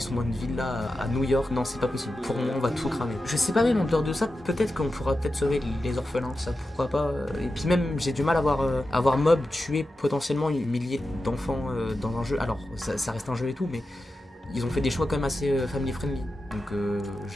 sont dans une villa à New York. Non, c'est pas possible. Pour moi, on va tout cramer. Je sais pas, même en dehors de ça, peut-être qu'on pourra peut-être sauver les orphelins, ça pourquoi pas. Et puis même, j'ai du mal à voir Mob tuer potentiellement milliers d'enfants dans un jeu. Alors, ça reste un jeu et tout, mais ils ont fait des choix quand même assez family friendly. Donc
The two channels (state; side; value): normal; both; correlation 0.91